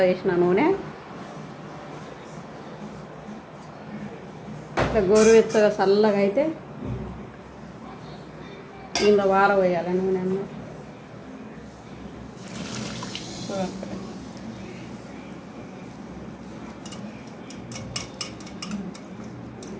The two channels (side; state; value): both; identical; correlation 1.00